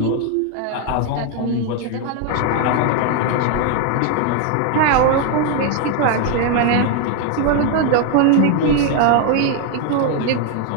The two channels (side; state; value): both; different; correlation 0.01